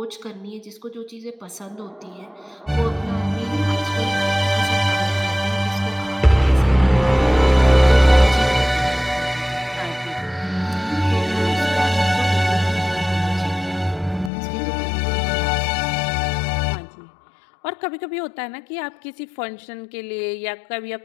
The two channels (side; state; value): right; drops out; at 14.3 s